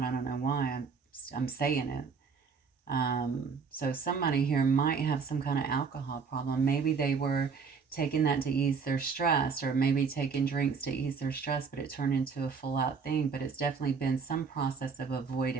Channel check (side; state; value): left; quieter; 5.5 dB